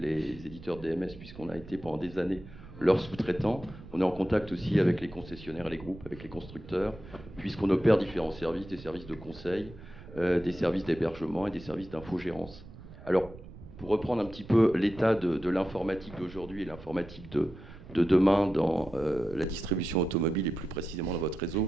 éditeurs DMS, puisqu'on a été pendant des années leurs sous-traitants. On est en contact aussi avec les concessionnaires et les groupes, avec les constructeurs, puisqu'on opère différents services, des services de conseil, des services d'hébergement et des services d'infogérance. Alors, pour reprendre un petit peu l'état de l'informatique d'aujourd'hui et l'informatique de demain dans la distribution automobile et plus précisément dans votre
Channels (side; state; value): right; noise; rumble, 17 dB below the sound